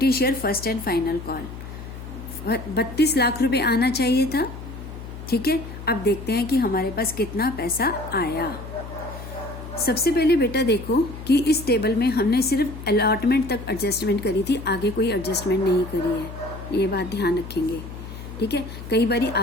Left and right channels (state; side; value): noise; left; hum, 11 dB below the sound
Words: share first and final call, 32 lakh रुपए आना चाहिए था, ठीक है। अब देखते हैं कि हमारे पास कितना पैसा आया। सबसे पहले बेटा देखो कि इस टेबल में हमने सिर्फ अलॉटमेंट तक एडजस्टमेंट करी थी, आगे कोई एडजस्टमेंट नहीं करी है, ये बात ध्यान रखेंगे, ठीक है। कई बारी